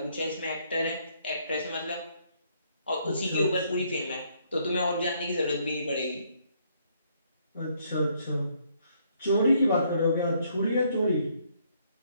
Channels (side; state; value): both; inverted; correlation -0.69